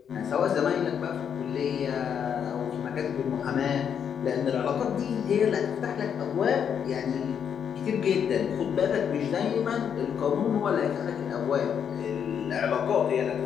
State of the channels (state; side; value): quieter; right; 7.9 dB